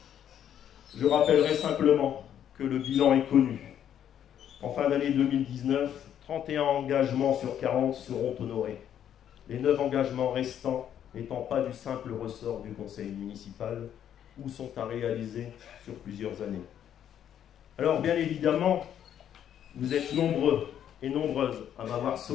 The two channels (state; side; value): quieter; right; 9.8 dB